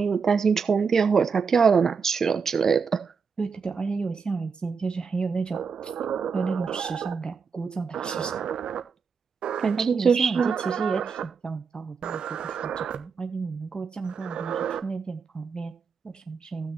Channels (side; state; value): left; quieter; 5.6 dB